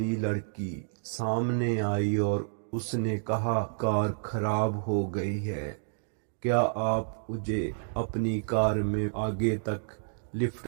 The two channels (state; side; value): silent; left; digital silence